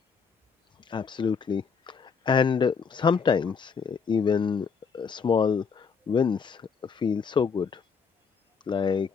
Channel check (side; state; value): right; quieter; 5.9 dB